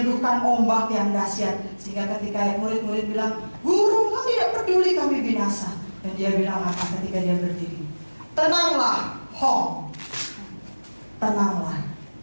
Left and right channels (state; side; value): inverted; both; correlation -1.00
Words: ombak yang dahsyat. Sehingga ketika murid-murid bilang, Guru, kau tidak peduli kami binasa. Dan dia bilang apa ketika dia berdiri? Tenanglah, Hong. Tenanglah,